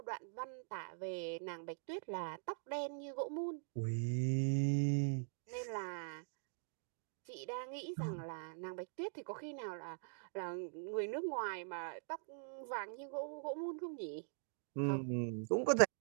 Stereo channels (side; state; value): left; silent; digital silence